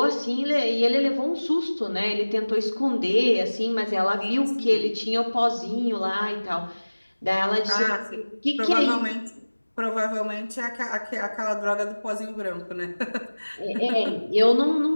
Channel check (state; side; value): inverted; both; correlation -1.00